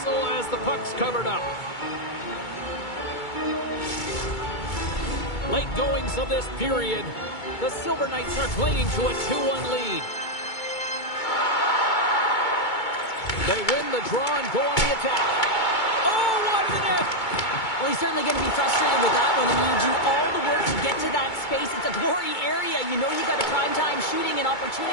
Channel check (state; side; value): late; right; 2.2 ms